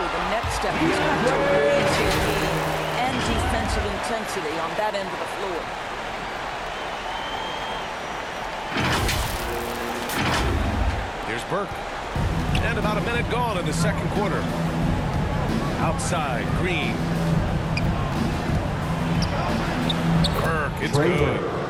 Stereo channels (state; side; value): identical; both; correlation 1.00